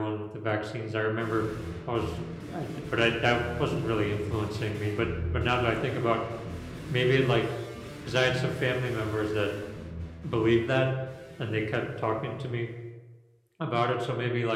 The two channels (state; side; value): identical; both; correlation 1.00